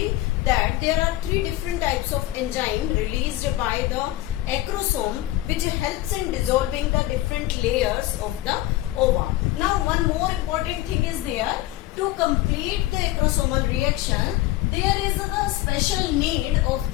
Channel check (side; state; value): right; quieter; 16.0 dB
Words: that there are three different types of enzyme released by the acrosome, which helps in dissolving the different layers of the ova. Now one more important thing is there. To complete the acrosomal reaction, there is a special need of